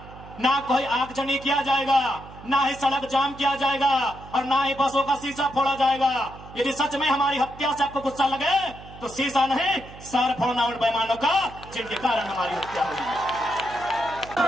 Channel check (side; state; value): right; noise; hum, 17 dB below the sound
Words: ना कोई आगजनी किया जाएगा, ना ही सड़क जाम किया जाएगा, और ना ही बसों का शीशा फोड़ा जाएगा। यदि सच में हमारी हत्या से आपको गुस्सा लगे तो शीशा नहीं, सर फोड़ना उन बेईमानों का जिनके कारण हमारी हत्या होगी।